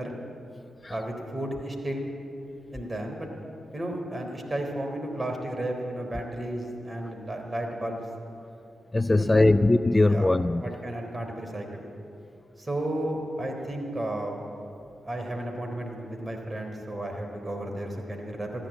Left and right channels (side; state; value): both; normal; correlation 0.95